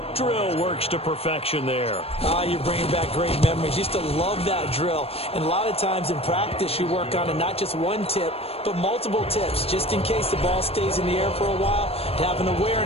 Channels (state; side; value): late; right; 0.28 ms